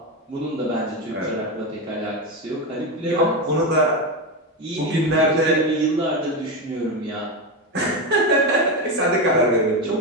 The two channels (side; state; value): both; normal; correlation 0.14